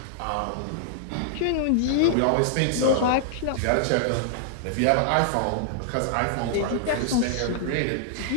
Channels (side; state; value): both; different; correlation -0.01